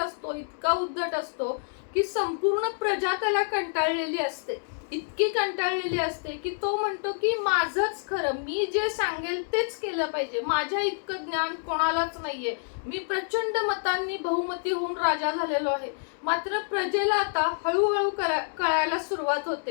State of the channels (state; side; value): silent; right; digital silence